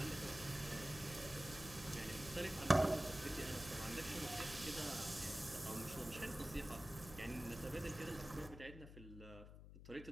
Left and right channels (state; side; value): noise; left; hum, 14 dB below the sound